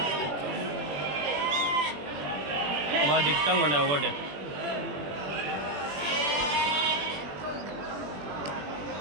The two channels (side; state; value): left; late; 21 ms